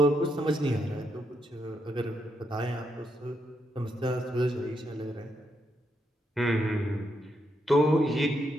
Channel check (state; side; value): normal; both; correlation 0.80